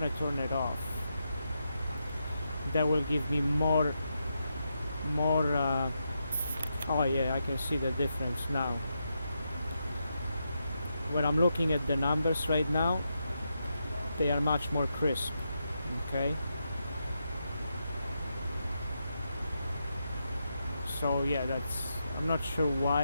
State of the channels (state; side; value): inverted; both; correlation -0.84